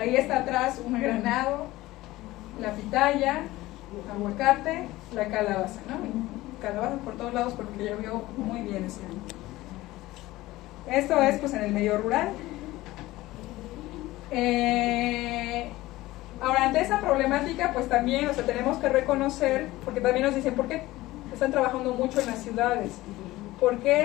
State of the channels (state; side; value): quieter; right; 17.9 dB